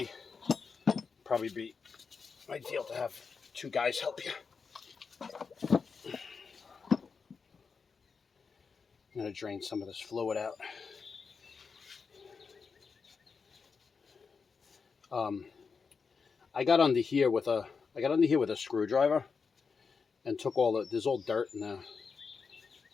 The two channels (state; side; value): quieter; right; 5.3 dB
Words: probably be ideal to have two guys help you. I'm gonna drain some of this fluid out. I got under here with a screwdriver, and took all the, there's all dirt in there.